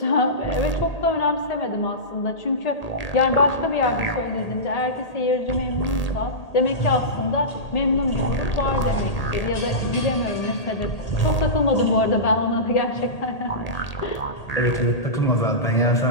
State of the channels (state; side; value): late; right; 1.8 ms